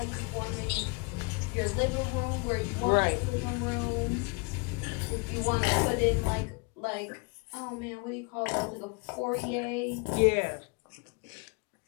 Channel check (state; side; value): quieter; right; 30.7 dB